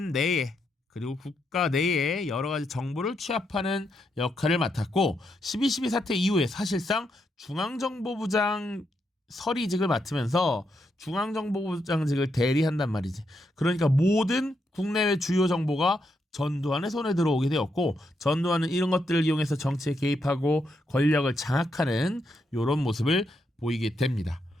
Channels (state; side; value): normal; both; correlation 0.80